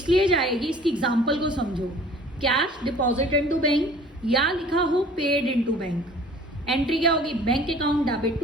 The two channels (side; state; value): both; normal; correlation 0.50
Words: जाएगी, इसकी एग्जांपल को समझो. कैश डिपॉजिट इनटू बैंक या लिखा हो पेड इनटू बैंक. एंट्री क्या होगी? Bank account debit